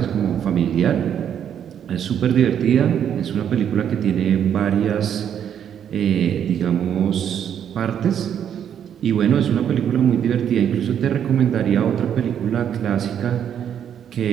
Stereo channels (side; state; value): left; quieter; 9.0 dB